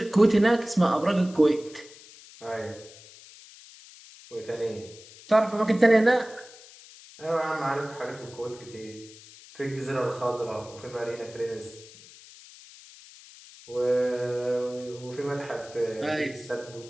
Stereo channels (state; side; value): noise; left; hiss, 20 dB below the sound